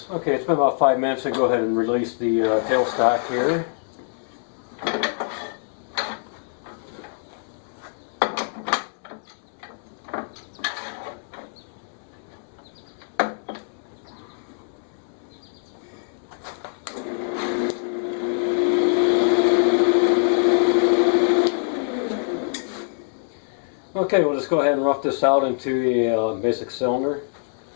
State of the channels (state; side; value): silent; right; digital silence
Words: Okay, it's been about 5 minutes, and go ahead and release the tailstock here. Okay, we'll just go ahead and rough this out into a basic cylinder.